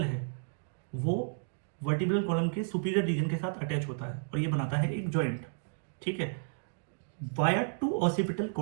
है वो वर्टिब्रल कॉलम के सुपीरियर रीजन के साथ अटैच होता है और ये बनाता है एक जॉइंट, ठीक है, वाया टू ऑसिपिटल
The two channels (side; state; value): left; silent; digital silence